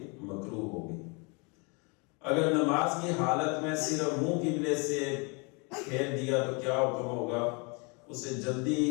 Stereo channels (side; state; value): right; quieter; 32.0 dB